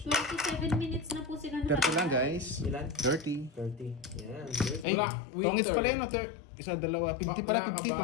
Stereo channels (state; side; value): drops out; right; at 4.9 s